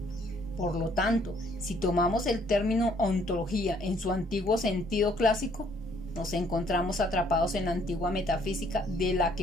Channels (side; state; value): both; normal; correlation 0.64